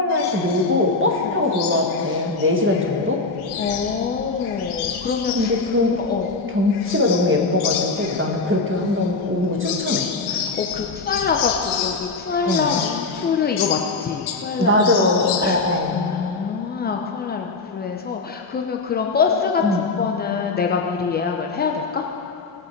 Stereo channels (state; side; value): quieter; right; 3.7 dB